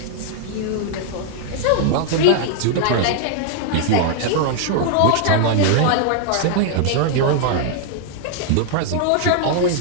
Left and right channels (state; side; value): different; both; correlation 0.00